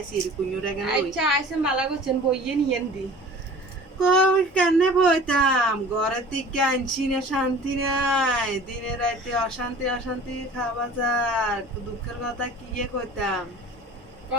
কুഞ്ഞুরে গেল আচ্ছা আইসে মালা করছেন বইয়ে নিয়েন দি। কই কেনে বইতাম ঘরের দিকে আনছি না শান্তি নাই দিনে রাতে অশান্তি অশান্তি খাওয়া যার দুঃখের কথা কি কইতাম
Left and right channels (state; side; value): normal; both; correlation 0.43